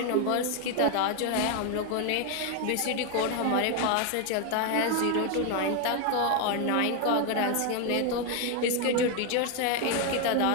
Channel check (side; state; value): both; different; correlation 0.01